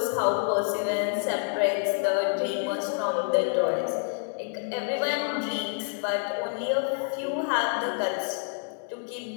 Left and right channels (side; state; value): right; silent; 59 dB below the other